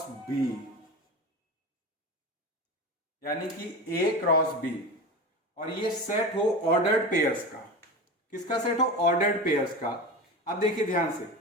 बी, यानी कि ए क्रॉस बी, और ये सेट हो ऑर्डर्ड पेयर्स का। किसका सेट हो? ऑर्डर्ड पेयर्स का। अब देखिए ध्यान से,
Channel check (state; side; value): normal; both; correlation 0.27